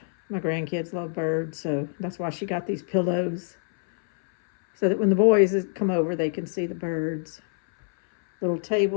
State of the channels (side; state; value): right; silent; 62 dB below the other